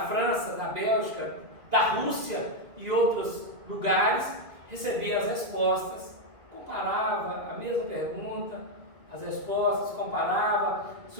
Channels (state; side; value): late; left; 2.0 ms